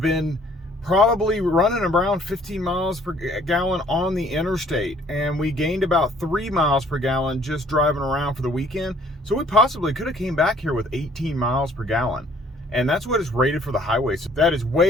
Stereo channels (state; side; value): normal; both; correlation 0.59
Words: been probably running around 15 miles per gallon on the interstate, and we gained about 3 miles per gallon just driving around for the weekend. So we possibly could have came back here with 18 miles per gallon, and that's what is rated for the highway. So that is